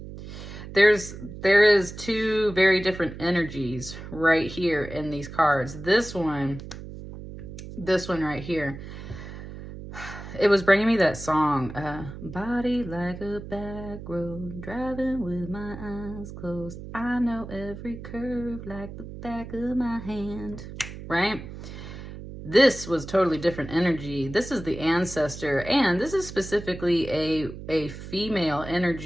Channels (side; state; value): right; noise; hum, 12 dB below the sound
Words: There is two very different energies right here in these cards. This one right here, it was bringing me that song, body like a back road, driving with my eyes closed. I know every curve like the back of my hand, right? This was totally different energy. This is the Ancestor, and this is specifically a female